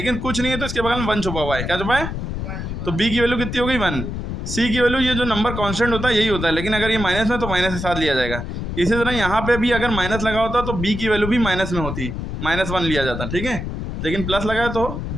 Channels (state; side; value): noise; left; rumble, 5 dB below the sound